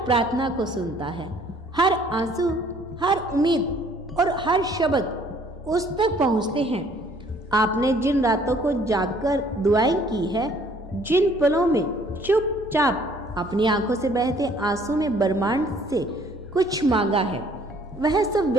प्रार्थना को सुनता है। हर आंसू, हर उम्मीद और हर शब्द उस तक पहुंचते हैं। आपने जिन रातों को जागकर दुआएं की है, जिन पलों में चुपचाप अपनी आंखों से बहते आंसू में ब्रह्मांड से कुछ मांगा है, वह सब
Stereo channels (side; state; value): both; normal; correlation 0.59